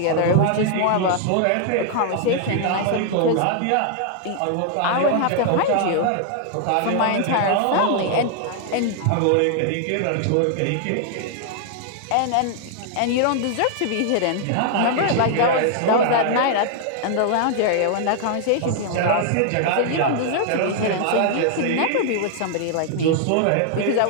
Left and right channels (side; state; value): both; different; correlation 0.00